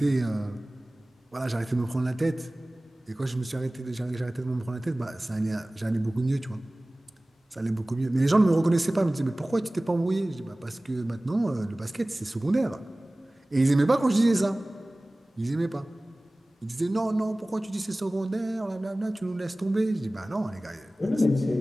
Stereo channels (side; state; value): both; normal; correlation 0.98